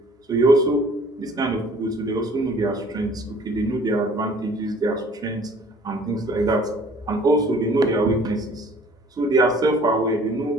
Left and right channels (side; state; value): both; normal; correlation 0.53